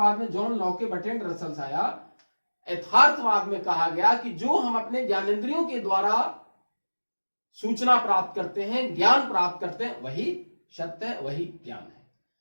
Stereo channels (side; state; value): both; inverted; correlation -1.00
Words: में जॉन लॉके, बर्ट्रैंड रसल्स आया। यथार्थवाद में कहा गया कि जो हम अपने ज्ञानेंद्रियों के द्वारा सूचना प्राप्त करते हैं, ज्ञान प्राप्त करते हैं, वही सत्य है, वही ज्ञान है।